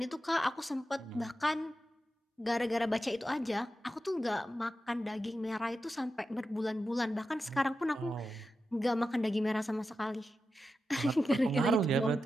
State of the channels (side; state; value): both; normal; correlation 0.90